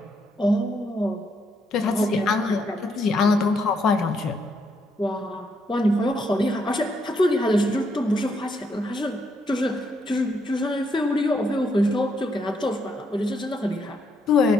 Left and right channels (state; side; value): normal; both; correlation 0.76